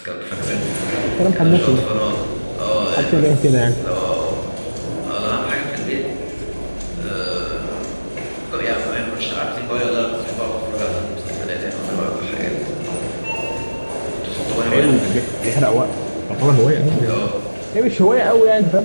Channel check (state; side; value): inverted; both; correlation -1.00